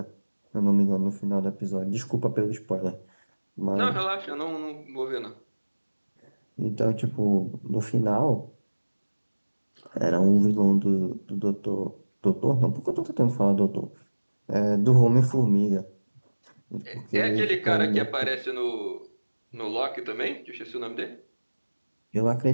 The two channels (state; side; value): inverted; both; correlation -1.00